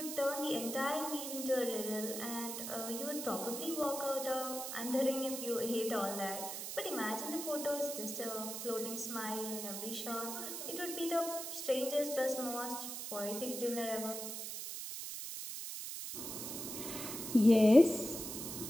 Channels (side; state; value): right; noise; hiss, 6 dB below the sound